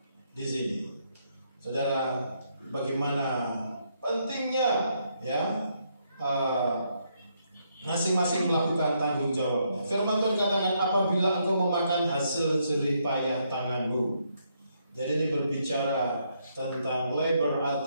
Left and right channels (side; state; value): both; inverted; correlation -0.75